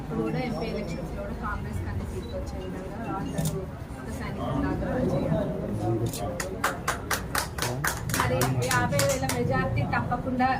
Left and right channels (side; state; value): both; identical; correlation 1.00